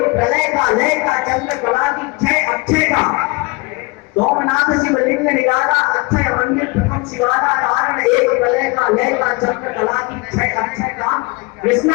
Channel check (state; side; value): quieter; right; 26.8 dB